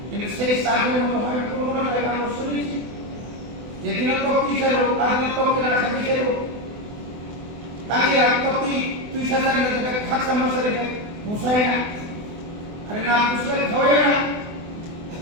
কিন্তু সেই সাতগুলোর মতো হয় কোনো জায়গা আমরা শুনেছি যেদিন তক টিচার আদিন তক কিনা খাবি ছিল তাকে আর তক তুই সাজার মধ্যে খাত সমস্যা রে বুঝাই না আরে না বুঝলে খাওয়াই না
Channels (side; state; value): left; late; 24 ms